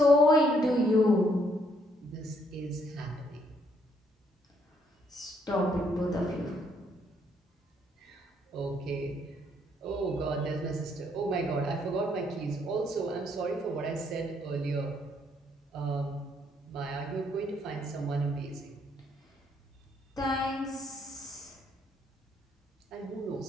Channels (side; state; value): both; normal; correlation 0.70